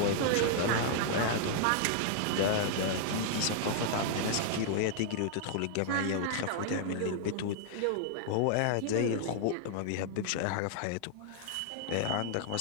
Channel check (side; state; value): both; different; correlation -0.01